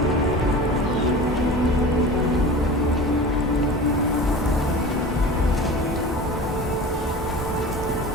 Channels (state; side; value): normal; both; correlation 0.35